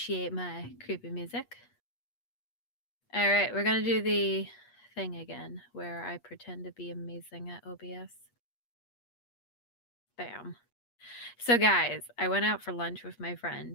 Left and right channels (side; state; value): right; late; 8.4 ms